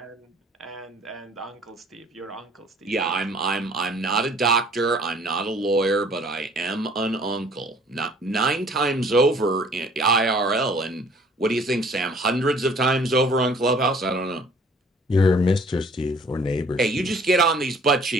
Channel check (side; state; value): both; normal; correlation 0.55